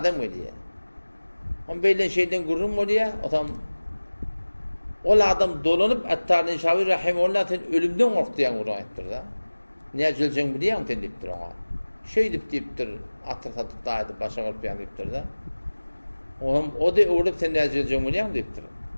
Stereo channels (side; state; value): both; inverted; correlation -1.00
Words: geliyor. On böyle şeyden gurrum oluyor. O zaman o adam dolanıp Attar-ı Nişaburi rahimullah'ın ölümden korktu yani Kur'an ettir da. Niye acılacağını biliyor musun deyiptir ona. Şey deyiptir, atır satıp da başa kalıp yani deyiptir da. O da uğrayıp sen ne acılacağını biliyor musun deyiptir.